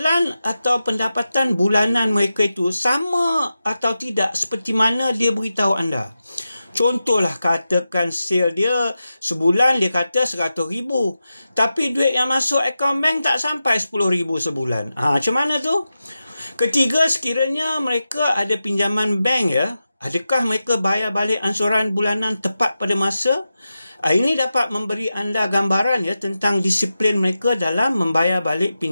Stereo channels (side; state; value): both; inverted; correlation -0.91